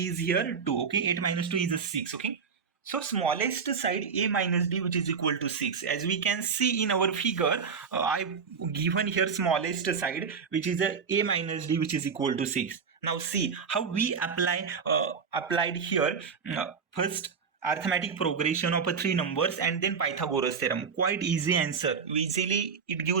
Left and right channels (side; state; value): left; quieter; 5.9 dB